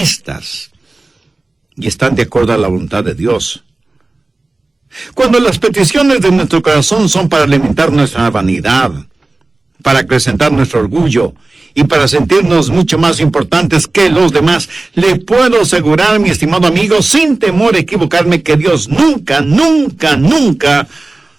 y están de acuerdo a la voluntad de Dios. Cuando las peticiones de nuestro corazón son para alimentar nuestra vanidad, para acrecentar nuestro orgullo y para sentirnos mucho más importantes que los demás, le puedo asegurar, mi estimado amigo, sin temor a equivocarme, que Dios nunca, nunca, nunca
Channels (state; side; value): quieter; left; 3.1 dB